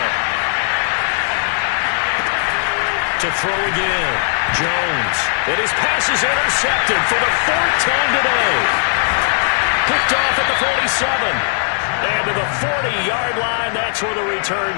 To throw again, Jones. And his pass is intercepted for the 4th time today. Picked off at the 47. And to the 40-yard line, that's where the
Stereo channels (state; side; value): silent; right; digital silence